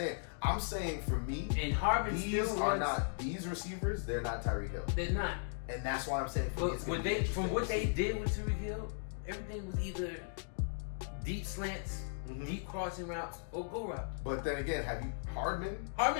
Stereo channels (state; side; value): silent; right; digital silence